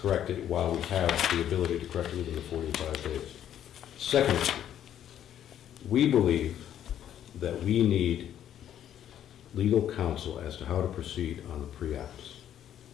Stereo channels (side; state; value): right; quieter; 10.5 dB